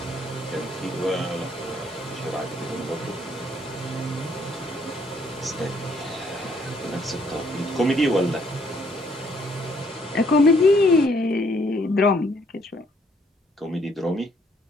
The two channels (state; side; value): normal; both; correlation 0.67